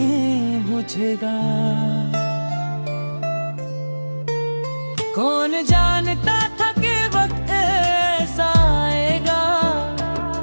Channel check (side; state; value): both; inverted; correlation -1.00